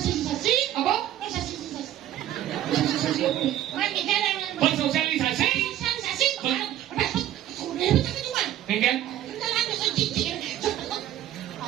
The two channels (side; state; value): left; quieter; 12.4 dB